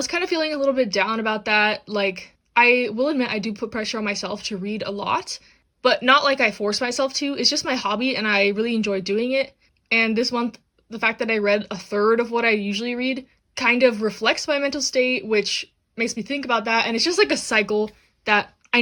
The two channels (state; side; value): identical; both; correlation 1.00